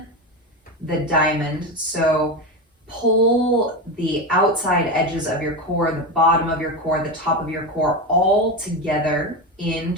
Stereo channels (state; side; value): normal; both; correlation 0.17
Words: the diamond. So pull the outside edges of your core, the bottom of your core, the top of your core, all together in